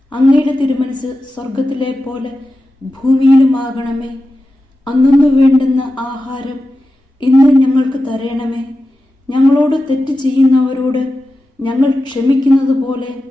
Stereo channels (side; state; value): both; normal; correlation 0.92